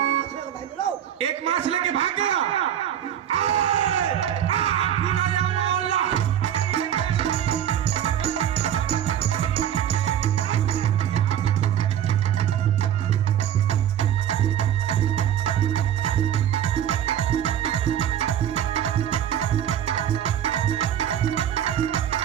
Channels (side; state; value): left; quieter; 10.3 dB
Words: एक मास लेके भाग गया।